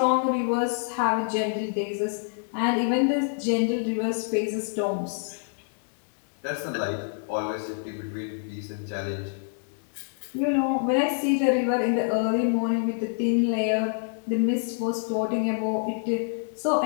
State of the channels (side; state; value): right; silent; digital silence